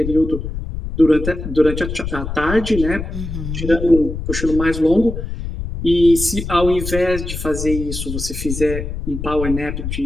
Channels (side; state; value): left; noise; rumble, 6 dB below the sound